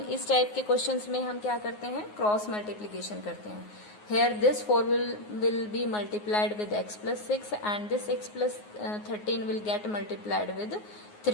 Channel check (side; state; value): right; late; 9.5 ms